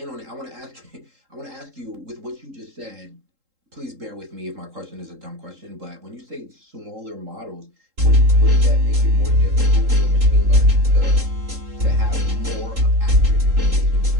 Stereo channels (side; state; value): left; late; 3.7 ms